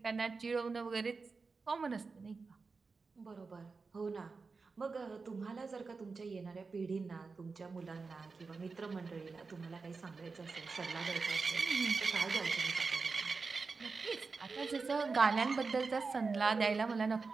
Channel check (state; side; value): quieter; left; 4.4 dB